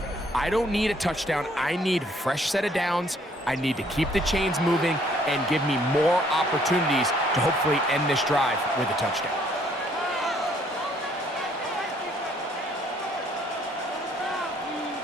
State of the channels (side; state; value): both; normal; correlation 0.64